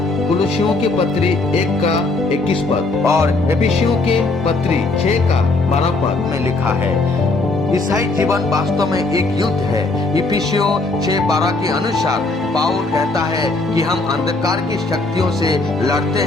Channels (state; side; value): quieter; right; 3.3 dB